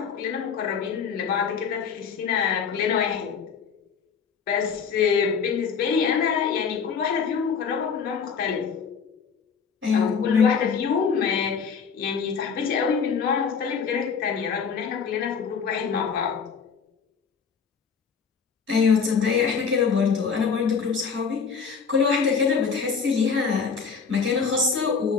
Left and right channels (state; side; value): quieter; right; 6.0 dB